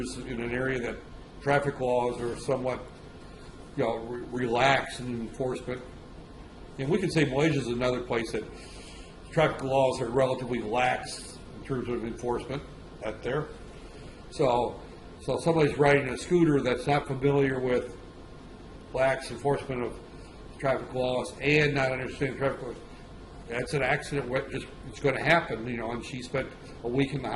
in an area that traffic laws are somewhat, relaxed in enforcement. And we could say Malaysia is another place that traffic laws are relatively lax in terms of enforcement out there. So somebody's riding a scooter that's not familiar with lax enforcement of traffic laws and not understanding traffic laws. That's an accident. It's going to happen, and she spent a week in the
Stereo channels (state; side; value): identical; both; correlation 1.00